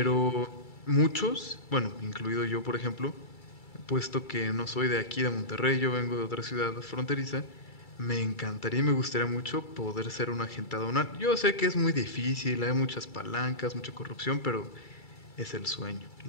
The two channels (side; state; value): right; late; 2.3 ms